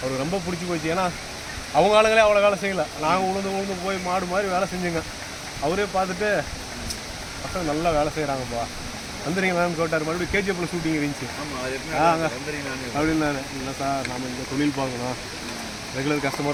ரொம்ப பிடிச்சி போச்சு. ஏன்னா அவங்க ஆளுங்களே அவ்வளோ வேலை செய்யலை. நாங்கள் உளுந்து போய் மாடு மாதிரி வேலை செஞ்சுங்க. அவரே பார்த்துட்டு பசங்க நல்லா வேலை செய்கிறாங்கப்பா, வந்துடுறீங்களான்னு கேட்டார். மறுபடியும் கேஜிஎஃப்ல ஷூட்டிங் இருந்துச்சு. அப்படின்னாரு. இல்லை சார், நம்ம இந்த தொழில் பார்க்கணும், ரெகுலர்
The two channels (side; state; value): both; identical; correlation 1.00